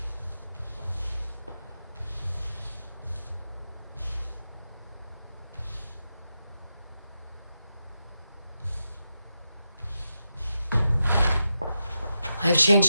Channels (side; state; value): both; inverted; correlation -0.89